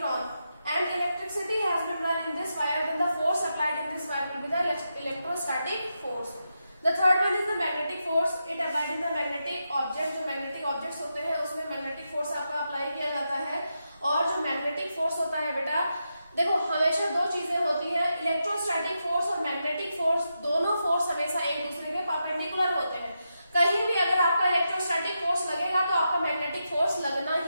and electricity has been run in this wire, then the force applied in this wire will be the electrostatic force. The third one is the magnetic force. It applied in the magnetic object. जो magnetic objects होते हैं उसमें magnetic force आपका apply किया जाता है force होता है बेटा, देखो हमेशा दो चीजें होती है, इलेक्ट्रोस्टैटिक फोर्स और मैग्नेटिक फोर्स, दोनों फोर्स हमेशा एक दूसरे के परपेंडिकुलर होते हैं। कहीं भी अगर आपका इलेक्ट्रोस्टैटिक फोर्स लगेगा तो आपका मैग्नेटिक फोर्स लगना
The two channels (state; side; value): inverted; both; correlation -0.86